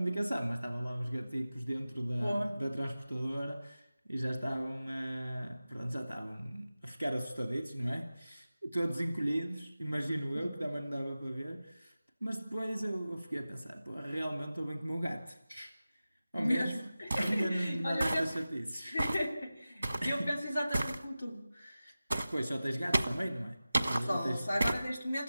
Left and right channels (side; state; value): both; inverted; correlation -0.95